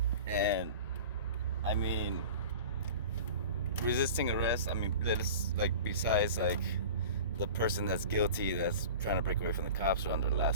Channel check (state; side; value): inverted; both; correlation -0.37